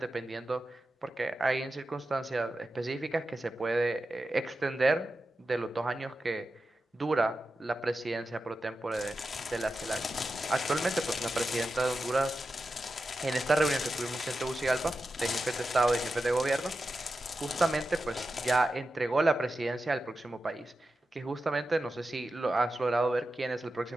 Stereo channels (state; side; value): normal; both; correlation 0.91